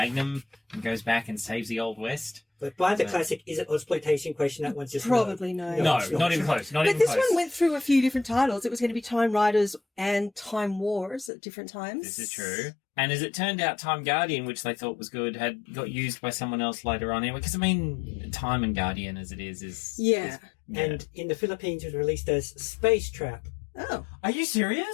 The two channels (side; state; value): right; drops out; at 11.3 s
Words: and goes back and saves the Old West. But by the classic, is it Exploitation question? That one's just probably no. No, not even close. But this one went through a few different titles. It was going to be Time Riders and Time Wars at different times. This is true. And as it turned out, Time Guardian, which they thought was good, had got used by someone else later on anyway. Because, I mean, Time and Guardian as it is... Yeah. And in the Philippines, it was released as Space Trap. Oh. Are you